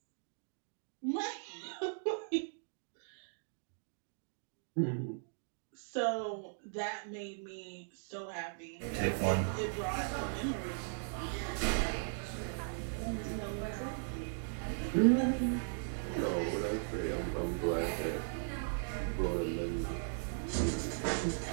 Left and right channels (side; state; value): left; silent; digital silence